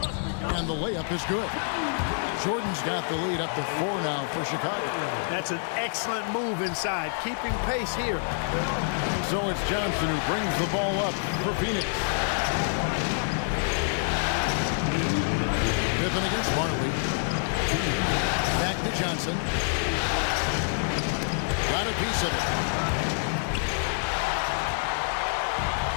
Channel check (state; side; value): silent; right; digital silence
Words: and the layup is good. Jordan's got the lead up to 4 now for Chicago. That's an excellent move inside, keeping pace here. So it's Johnson who brings the ball up for Phoenix. Pippen against Marley. Back to Johnson. Got a piece of it.